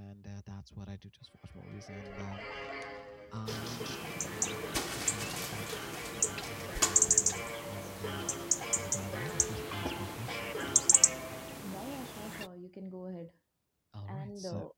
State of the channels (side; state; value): both; identical; correlation 1.00